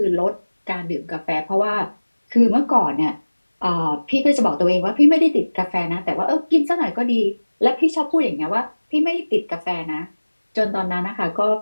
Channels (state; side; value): inverted; both; correlation -1.00